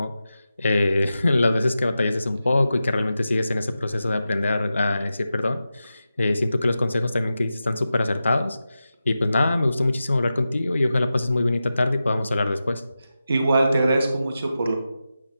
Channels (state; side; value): inverted; both; correlation -0.92